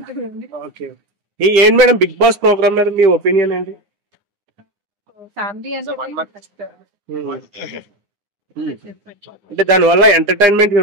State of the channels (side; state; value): left; late; 9.8 ms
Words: ఓకే, ఏంటి మేడం బిగ్ బాస్ ప్రోగ్రామ్ మీద మీ ఒపీనియన్ ఏంటి? ఫ్యామిలీ అంటే దాని వల్ల ఎంటర్టైన్మెంట్